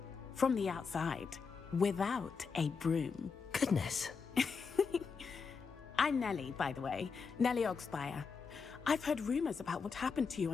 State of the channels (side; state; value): right; quieter; 5.4 dB